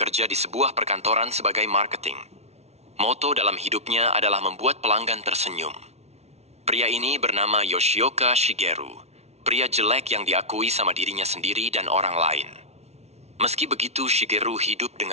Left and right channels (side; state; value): left; late; 0.31 ms